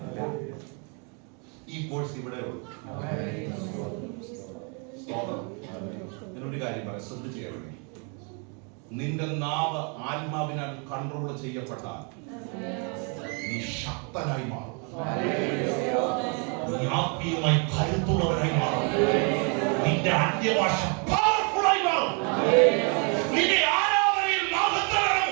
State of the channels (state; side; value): quieter; left; 36.2 dB